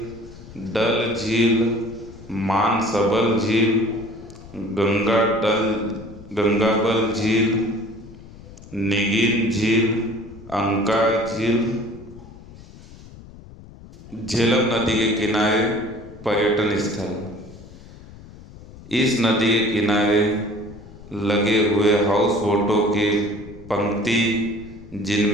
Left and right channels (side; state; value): left; noise; rumble, 18 dB below the sound